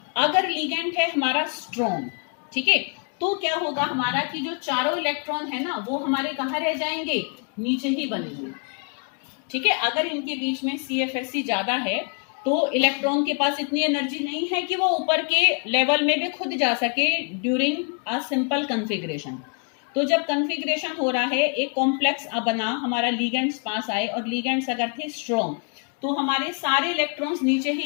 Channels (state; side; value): quieter; right; 39.4 dB